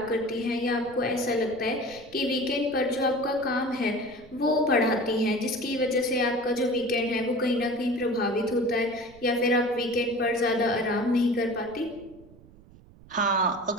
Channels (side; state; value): right; noise; rumble, 23 dB below the sound